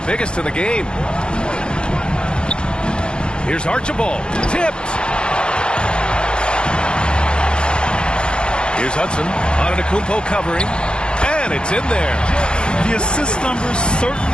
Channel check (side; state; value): right; late; 0.052 ms